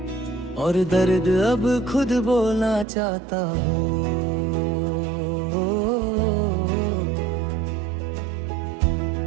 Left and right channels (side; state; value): left; drops out; at 2.9 s